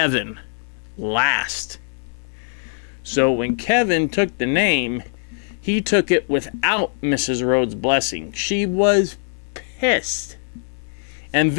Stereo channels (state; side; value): silent; right; digital silence